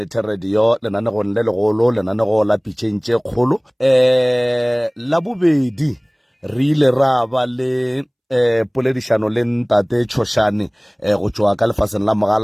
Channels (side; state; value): both; identical; correlation 1.00